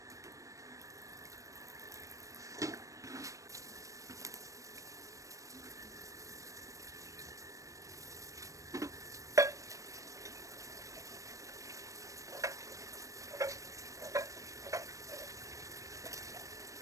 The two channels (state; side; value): late; left; 0.16 ms